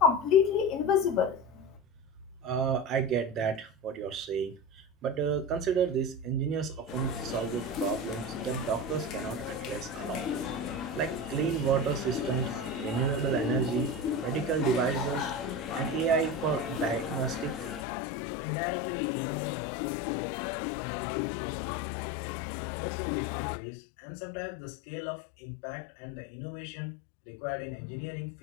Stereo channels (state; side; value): drops out; right; at 17.9 s